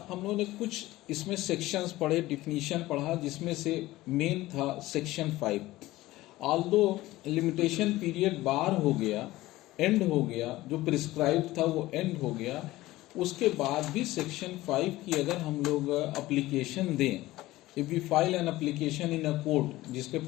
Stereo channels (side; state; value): right; quieter; 17.5 dB